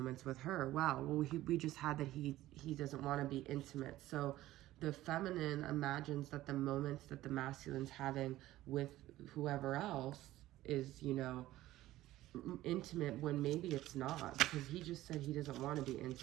with her. Wow, well, we just had that he doesn't want to be intimate. So the feminine imagines that the moments that the masculine's having with whoever else is, you know, intimate, when maybe it's not, because he just said he doesn't want to be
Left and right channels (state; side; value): quieter; left; 15.5 dB